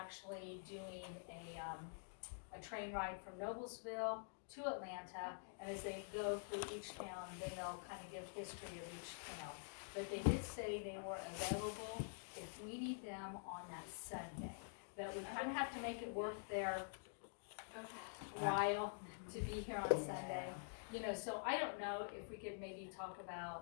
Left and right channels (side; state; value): right; silent; digital silence